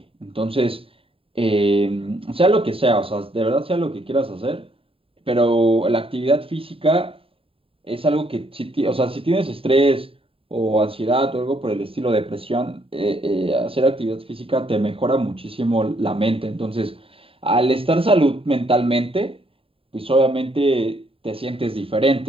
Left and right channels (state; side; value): late; left; 0.27 ms